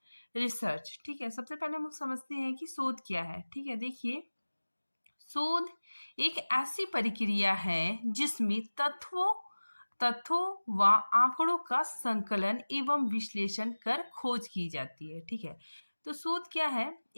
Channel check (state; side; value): inverted; both; correlation -1.00